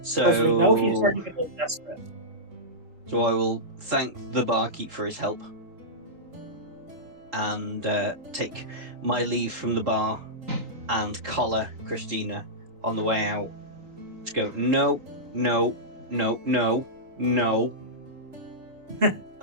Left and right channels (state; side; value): late; left; 3.9 ms